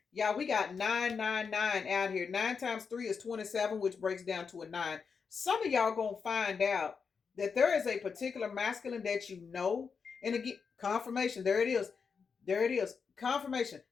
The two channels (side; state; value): right; quieter; 5.7 dB